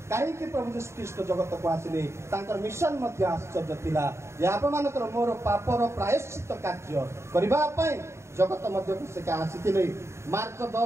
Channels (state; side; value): late; left; 0.13 ms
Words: କାହିଁକି ପ୍ରଭୁ ଯୀଶୁ ଖ୍ରୀଷ୍ଟ ଜଗତକୁ ଆସିଲେ ତାଙ୍କର ମିଶନ ମଧ୍ୟ ଆଶ୍ଚର୍ଯ୍ୟ ଥିଲା ଯେ ଆପଣମାନଙ୍କର ମୋର ପାପର ପ୍ରାୟଶ୍ଚିତ କାର୍ଯ୍ୟ କରିବା ପାଇଁ ଜଗତ ମଧ୍ୟକୁ ସେ ଆସିଥିଲେ। ମାର୍କ